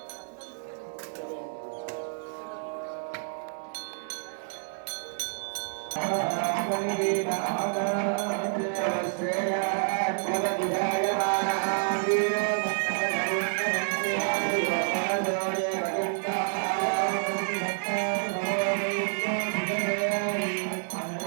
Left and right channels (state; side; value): silent; left; 59 dB below the other